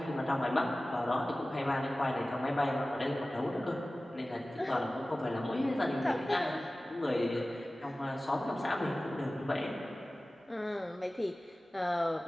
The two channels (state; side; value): normal; both; correlation 0.97